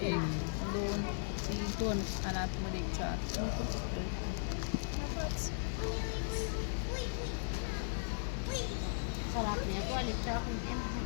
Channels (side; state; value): right; silent; digital silence